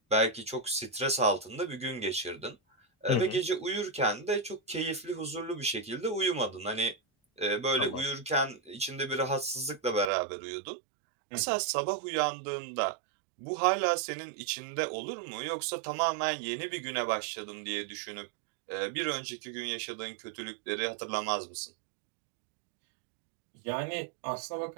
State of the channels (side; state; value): left; drops out; at 10.1 s